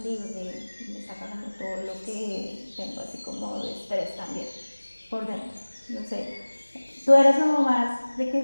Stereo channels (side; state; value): both; inverted; correlation -1.00